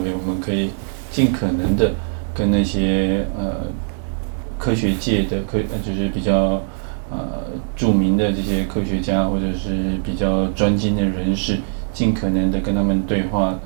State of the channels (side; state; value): left; silent; digital silence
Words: 我们可以尽可能的跟那些科学界的就是比较著名的这些科学家或者是比较专精的人士，尽可能的跟他们对话